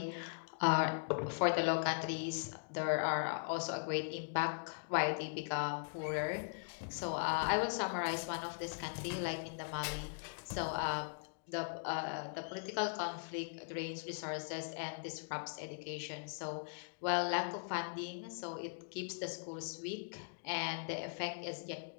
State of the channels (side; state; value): right; silent; digital silence